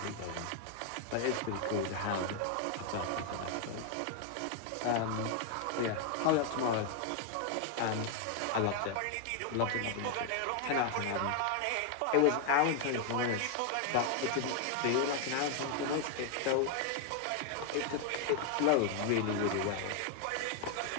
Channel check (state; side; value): different; both; correlation 0.00